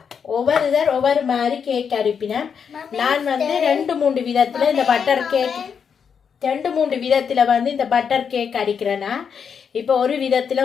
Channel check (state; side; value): quieter; right; 6.8 dB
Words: ஒவ்வொரு மாதிரி கேக் அரிப்பினேன். நான் வந்து 2-3 விதத்தில் இந்த பட்டர் கேக் 2-3 விதத்தில் வந்து இந்த பட்டர் கேக் அடிக்கிறேன்னா, இப்போ ஒரு விதத்தில்